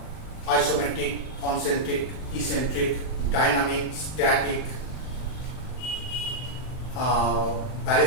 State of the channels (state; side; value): late; right; 39 ms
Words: isometric, concentric, eccentric, dynamic, static,